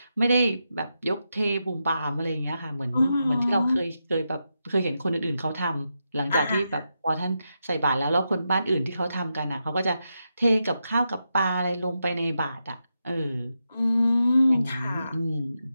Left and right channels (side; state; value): both; inverted; correlation -0.86